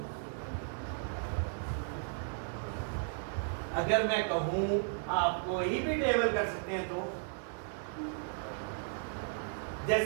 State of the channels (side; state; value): left; silent; 54 dB below the other